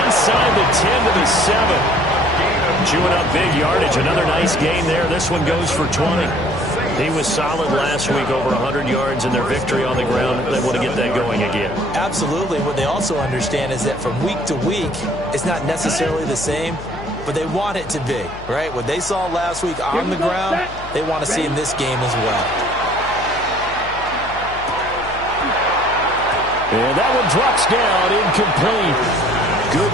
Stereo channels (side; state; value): left; noise; hum, 15 dB below the sound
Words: inside the 10 to the 7. Chewing up big yardage. Another nice gain there. This one goes for 20. He was solid last week, over 100 yards in their victory on the ground. They want to get that going again. Absolutely. What they also understand is that from week to week, it's not necessarily the same, but they want it to be, right? What they saw last week on the ground, they want to see in this game as well. And that one drops down, incomplete. Good